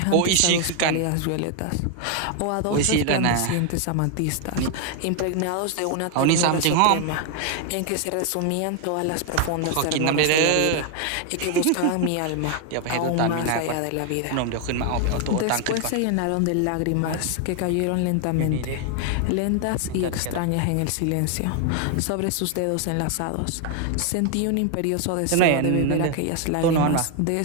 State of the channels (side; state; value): both; different; correlation 0.00